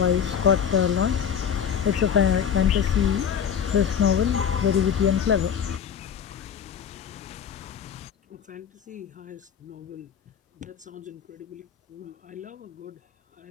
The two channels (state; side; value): quieter; right; 8.0 dB